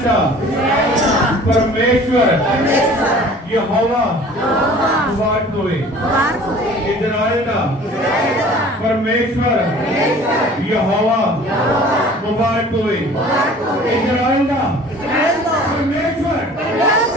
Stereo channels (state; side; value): normal; both; correlation 0.47